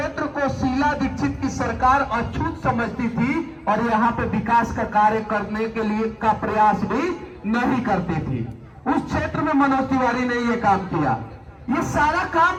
को शीला दीक्षित की सरकार अछूत समझती थी और यहां पे विकास का कार्य करने के लिए का प्रयास भी नहीं करती थी। उस क्षेत्र में मनोज तिवारी ने ये काम किया। ये सारा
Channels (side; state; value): both; identical; correlation 1.00